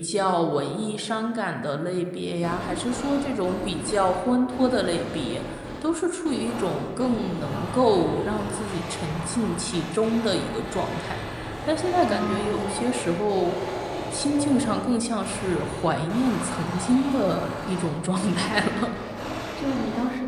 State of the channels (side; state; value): both; identical; correlation 1.00